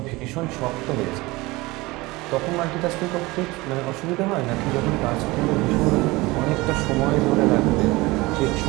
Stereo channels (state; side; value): quieter; left; 21.8 dB